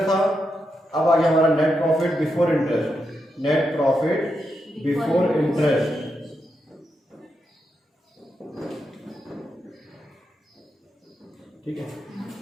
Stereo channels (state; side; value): normal; both; correlation 0.85